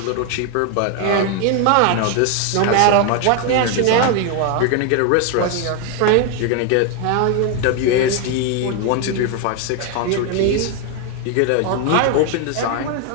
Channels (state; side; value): different; both; correlation 0.01